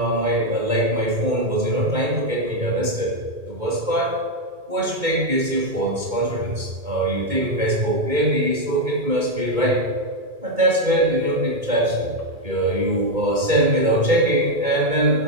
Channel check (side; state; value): left; late; 2.2 ms